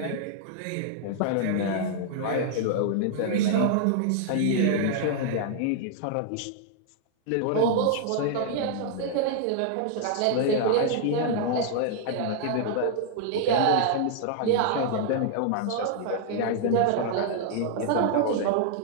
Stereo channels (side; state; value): both; different; correlation -0.01